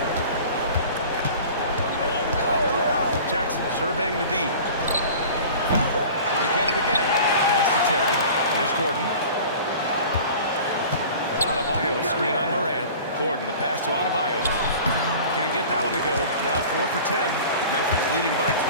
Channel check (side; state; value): both; inverted; correlation -0.41